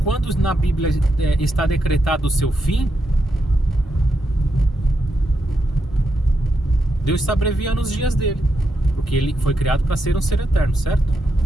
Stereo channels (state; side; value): normal; both; correlation 0.83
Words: quando na Bíblia está decretado o seu fim, Deus está abreviando os dias dele, porque ele foi criado para ser um ser eterno, certo?